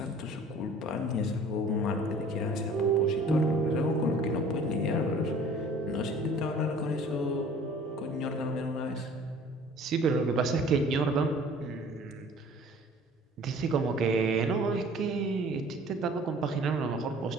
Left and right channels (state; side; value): normal; both; correlation 0.49